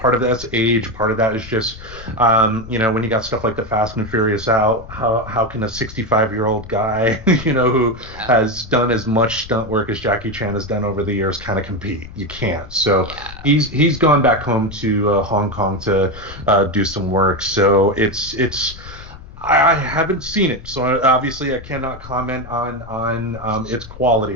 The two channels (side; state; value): left; noise; rumble, 16 dB below the sound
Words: of that's age, part of that is just, when you got stuff like the Fast and Furious out, how can a 65-year-old guy, who Yeah. has done as much stunt work as Jackie Chan has done over the years kind of compete? You can't. So Yeah. he's gone back home to Hong Kong to do some work. So it's I haven't seen it, so obviously I cannot comment on its